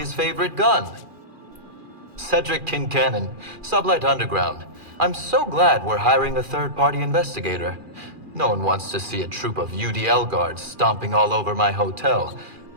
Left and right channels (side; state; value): left; late; 2.4 ms